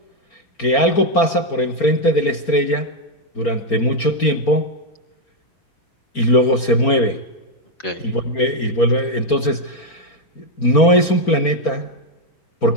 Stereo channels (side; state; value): right; late; 4.4 ms